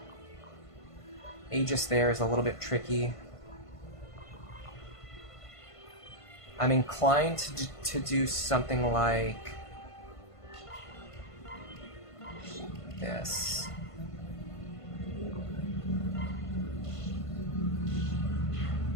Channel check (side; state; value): right; late; 1.5 ms